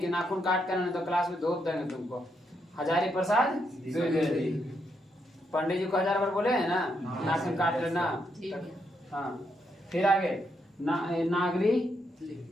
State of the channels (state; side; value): normal; both; correlation 0.79